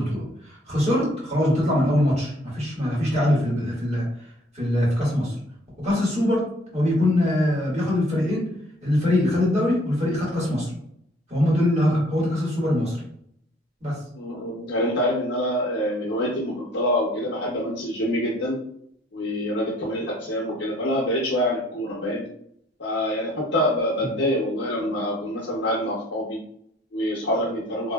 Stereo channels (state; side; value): normal; both; correlation 0.59